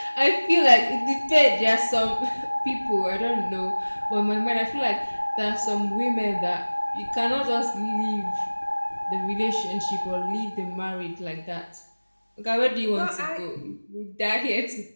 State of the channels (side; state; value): both; inverted; correlation -1.00